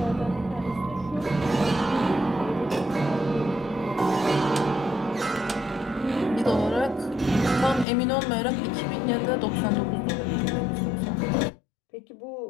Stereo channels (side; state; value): right; drops out; at 7.9 s